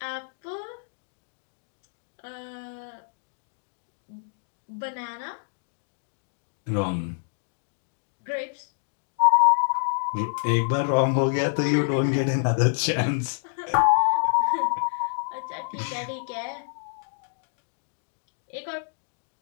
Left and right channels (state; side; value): silent; right; digital silence